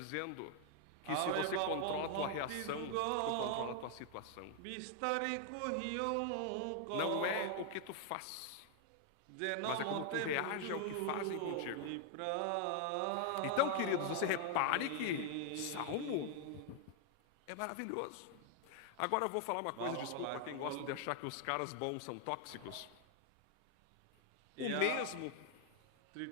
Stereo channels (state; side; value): different; both; correlation 0.00